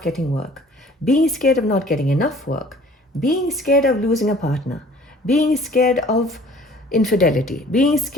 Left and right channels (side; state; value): both; normal; correlation 0.52